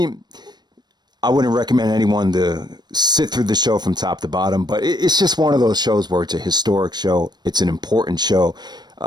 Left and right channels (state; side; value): late; left; 0.20 ms